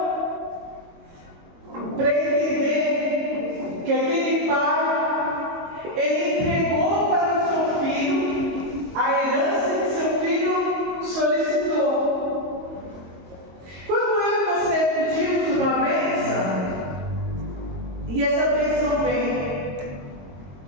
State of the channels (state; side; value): late; left; 22 ms